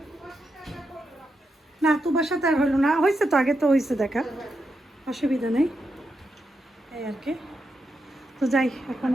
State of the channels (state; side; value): normal; both; correlation 0.85